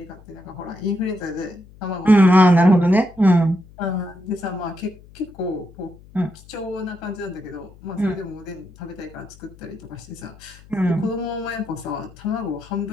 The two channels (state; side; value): noise; left; hum, 23 dB below the sound